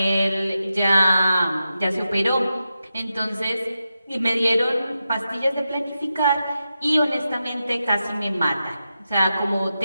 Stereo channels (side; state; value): both; inverted; correlation -0.89